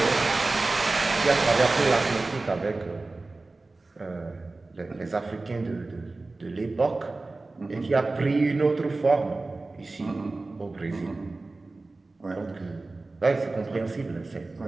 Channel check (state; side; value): quieter; left; 3.3 dB